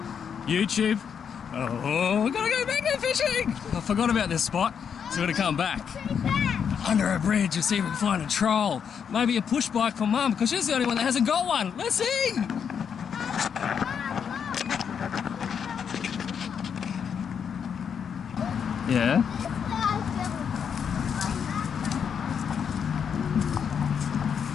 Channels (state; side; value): quieter; right; 7.3 dB